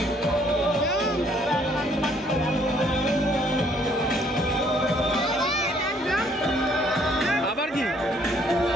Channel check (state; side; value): normal; both; correlation 0.64